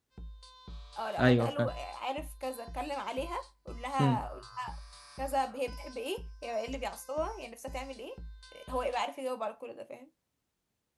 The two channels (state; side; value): identical; both; correlation 1.00